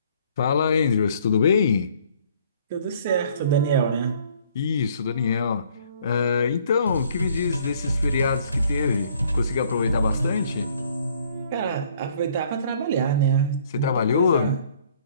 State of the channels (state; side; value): inverted; both; correlation -0.60